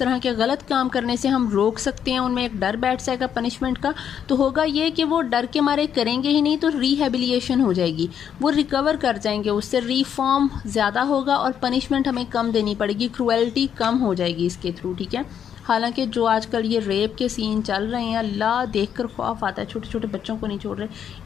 के गलत काम करने से हम रोक सकते हैं, उनमें एक डर बैठ जाएगा पनिशमेंट का, तो होगा ये कि वो डर के मारे करेंगे ही नहीं, तो रिहेबिलिएशन हो जाएगी, वो रिकवर कर जाएंगे, उससे रिफॉर्म ज़्यादा होगा और पनिशमेंट हमें कम देनी पड़ेगी, क्रूएल्टी कम हो जाएगी इसके थ्रू, ठीक है। हालांकि जो आजकल ये रेप के सीन चल रहे हैं, अल्लाह देखकर खौफ आता है। छोटे छोटे बच्चों को नहीं छोड़ रहे,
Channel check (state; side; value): quieter; right; 8.6 dB